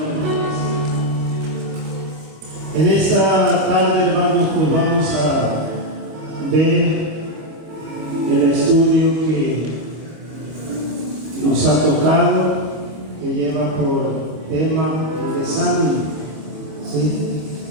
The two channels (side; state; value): left; late; 26 ms